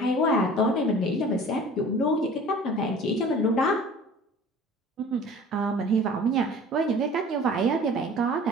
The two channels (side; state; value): both; normal; correlation 0.45